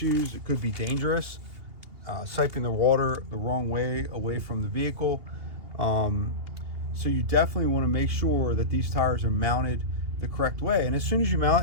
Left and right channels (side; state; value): left; late; 2.8 ms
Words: It could be dangerous, siping the water the wrong way away from the vehicle. So you definitely want to make sure that these tires are mounted the correct way. And as soon as you